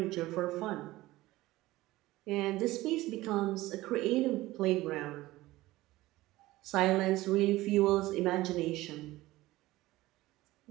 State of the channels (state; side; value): quieter; left; 17.9 dB